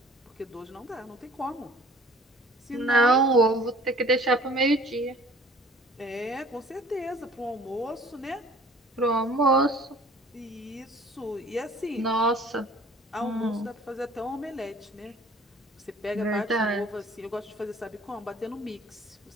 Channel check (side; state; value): both; normal; correlation 0.52